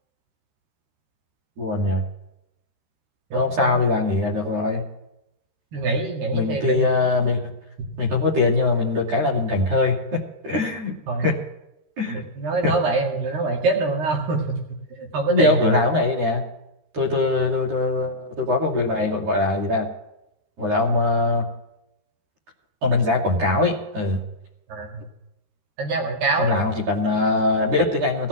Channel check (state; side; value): late; left; 13 ms